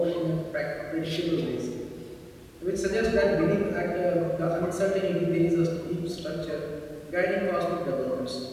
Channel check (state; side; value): identical; both; correlation 1.00